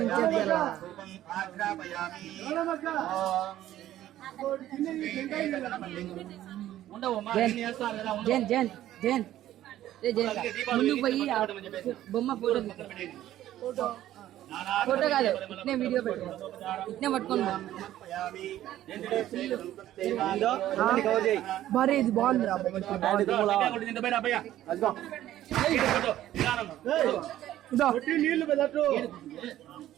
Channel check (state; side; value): quieter; left; 13.2 dB